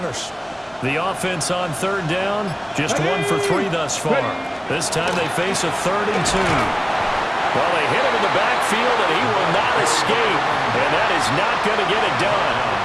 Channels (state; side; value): identical; both; correlation 1.00